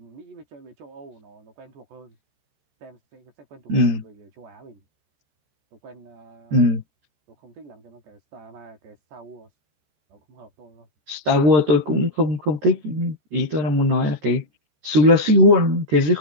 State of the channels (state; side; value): late; left; 14 ms